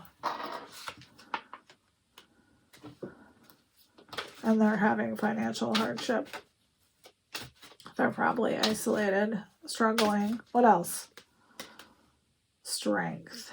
And they're having financial hardship. They're probably isolated, struggling. What else? Strength.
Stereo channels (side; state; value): both; identical; correlation 1.00